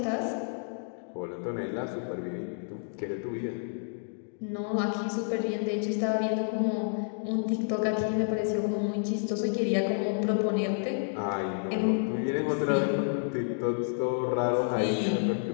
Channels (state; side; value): silent; right; digital silence